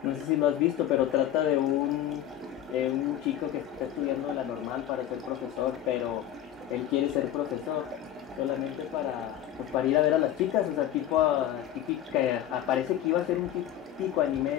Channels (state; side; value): quieter; right; 11.4 dB